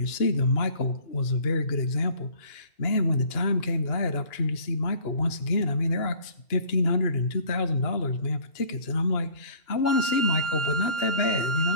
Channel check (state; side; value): late; right; 2.9 ms